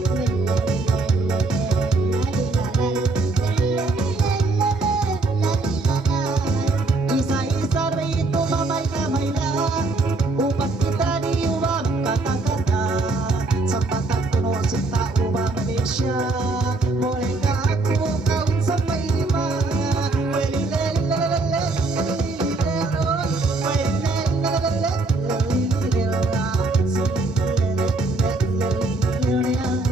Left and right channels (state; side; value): quieter; left; 3.3 dB